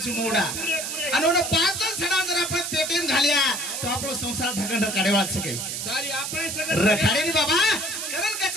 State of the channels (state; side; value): noise; right; hiss, 4 dB below the sound